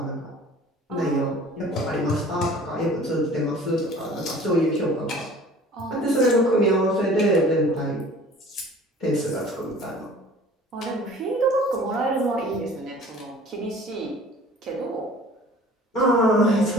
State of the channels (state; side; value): normal; both; correlation 0.47